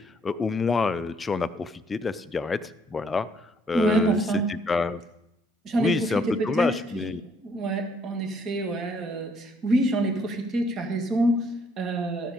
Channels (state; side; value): normal; both; correlation 0.67